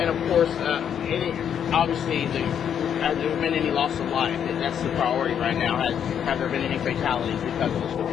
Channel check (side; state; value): right; quieter; 8.6 dB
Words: of course, obviously, has there been any loss of life? That's the priority right now. Have there been any fatalities because of the storm?